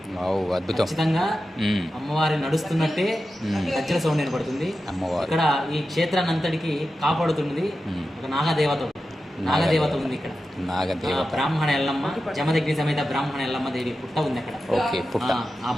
అద్భుతం. ఖచ్చితంగా అమ్మవారి నడుస్తున్నట్టే గజ్జల సౌండ్ వినపడుతుంది. ఇక్కడ ఈ క్షేత్రాన్ని అంతటికి కాపాడుతున్నది ఒక నాగదేవత ఉంది. ఇక్కడ బ్రాహ్మణ ఎల్లమ్మ, జమదగ్ని సమేత బ్రాహ్మణ ఎల్లమ్మ దేవి పుట్ట ఉంది అక్కడ. ఆ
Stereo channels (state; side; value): normal; both; correlation 0.92